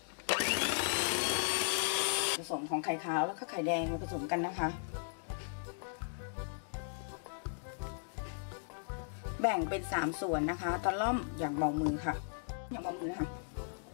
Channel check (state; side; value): silent; right; digital silence